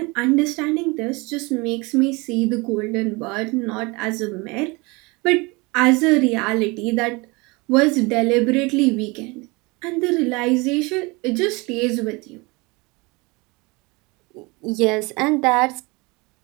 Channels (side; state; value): left; quieter; 26.0 dB